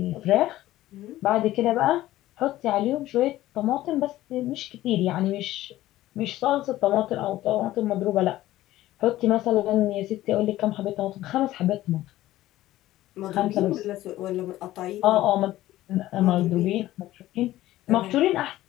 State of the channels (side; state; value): right; quieter; 15.3 dB